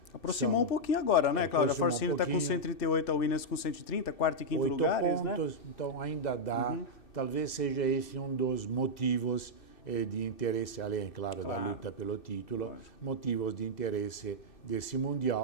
Aproximou um pouquinho agora, né, Cláudio? A Force India está com 138, a Williams com 130, quarto e quinto lugares, pontos, né? Então ainda dá, talvez seja esse um dos motivos de interesse, além, claro, da luta pelo título, motivos de interesse desse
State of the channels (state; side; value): late; right; 2.6 ms